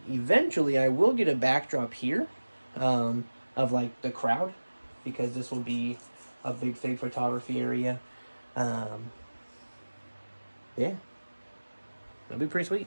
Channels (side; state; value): both; inverted; correlation -1.00